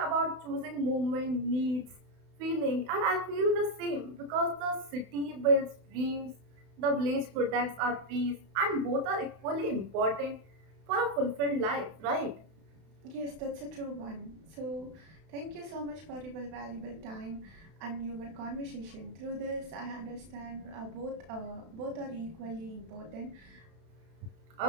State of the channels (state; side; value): late; left; 32 ms